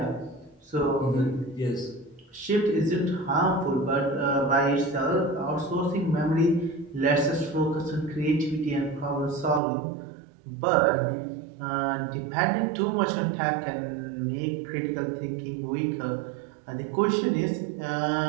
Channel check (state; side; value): drops out; left; at 9.6 s